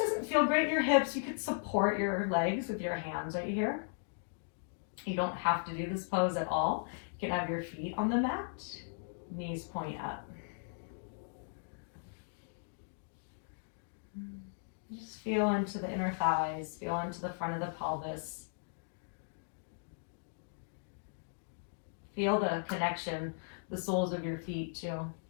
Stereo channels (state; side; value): silent; right; digital silence